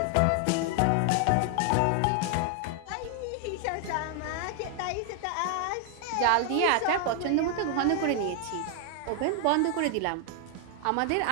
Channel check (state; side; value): different; both; correlation 0.00